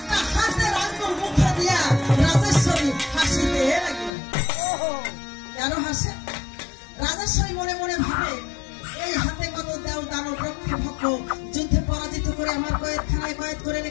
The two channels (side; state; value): right; drops out; at 4.1 s